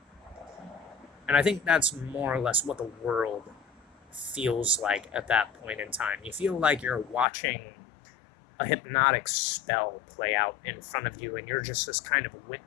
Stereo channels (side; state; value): right; drops out; at 7.2 s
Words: And I think that's more or less what the world feels like at that point in time. You feel like you're watching a hypnotic spell play out in front of you, and you're just this kind of